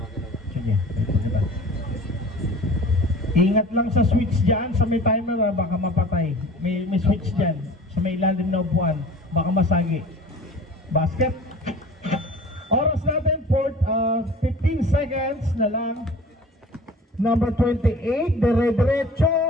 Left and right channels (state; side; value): normal; both; correlation 0.43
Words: Sige, diba? Ingat lang sa switch dyan, sa may timer, baka mapatay. May switch dyan, sa may ilalim na upuan, baka masagi. Basket. Oras natin, 15 seconds na lang. Number 28, dire-diretso.